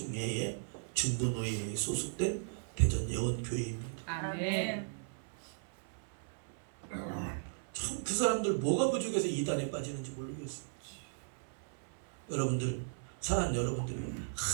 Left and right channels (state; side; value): silent; left; 53 dB below the other